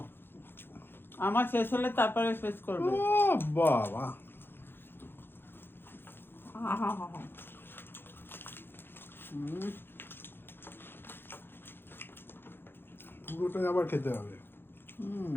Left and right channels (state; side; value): late; right; 0.10 ms